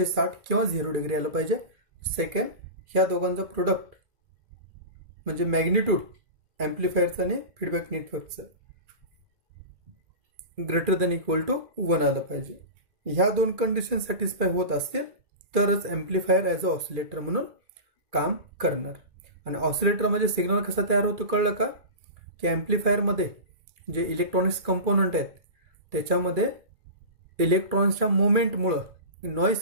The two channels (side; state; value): left; late; 2.3 ms